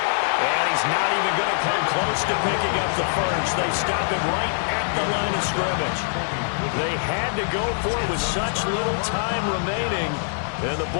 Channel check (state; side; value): silent; right; digital silence